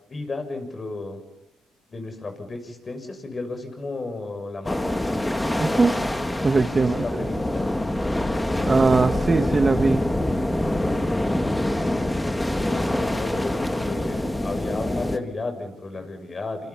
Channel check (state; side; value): normal; both; correlation 0.94